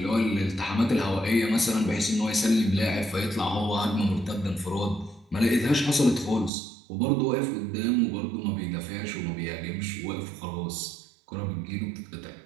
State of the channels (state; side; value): drops out; left; at 6.5 s